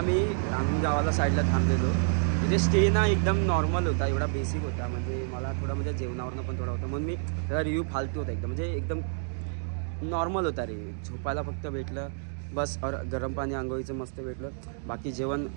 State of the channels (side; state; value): left; silent; 59 dB below the other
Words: गावाला साईडला थांबलेलो. तिथे स्टे ना एकदम नॉर्मल होता, एवढा बेसिक होता. म्हणजे मला थोडा म्हणजे जेवणावरनं पण थोडा होता, म्हणून मी त्याचा रिव्ह्यू फालतू होता एकदम. म्हणजे एकदम नॉर्मल होता रे. झोपायला फक्त भेटलं बस, और गरम पाणी आंघोळीचं मस्त भेटलं. बाकी जेवण